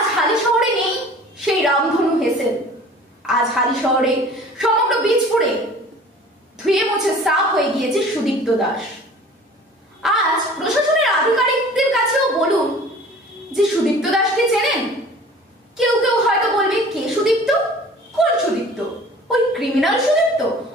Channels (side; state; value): both; normal; correlation 0.46